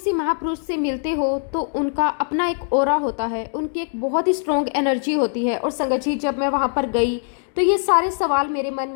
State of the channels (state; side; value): silent; right; digital silence